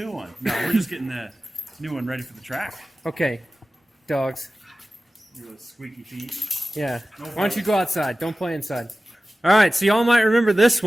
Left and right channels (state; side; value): normal; both; correlation 0.96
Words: one. No, we're just getting the new one ready for the track. Okay, dogs. Your little squeaky feet. Yeah. No Why don't you go outside? Don't play inside. All right, so y'all might remember this